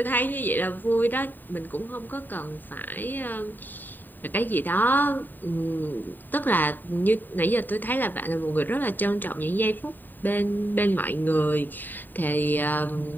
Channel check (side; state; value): right; late; 0.090 ms